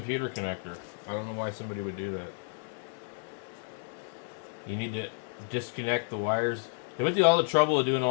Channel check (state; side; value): silent; right; 55 dB below the other